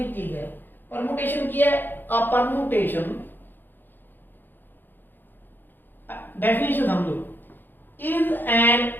चीज है परमुटेशन की है आ परमुटेशन डेफिनेशन समझो इज एन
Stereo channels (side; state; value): right; late; 0.093 ms